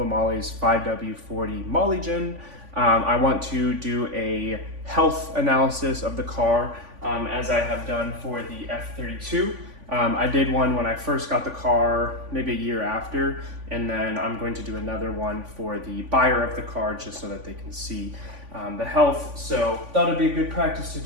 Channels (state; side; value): late; left; 3.5 ms